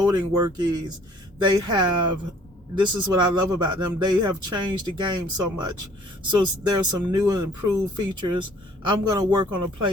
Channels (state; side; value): normal; both; correlation 0.56